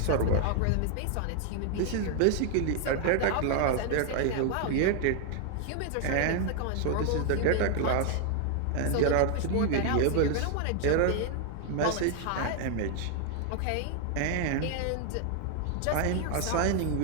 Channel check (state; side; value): different; both; correlation 0.00